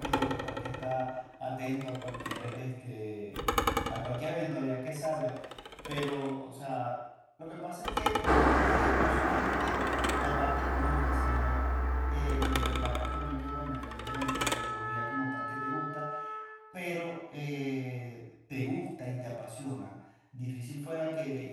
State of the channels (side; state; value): both; identical; correlation 1.00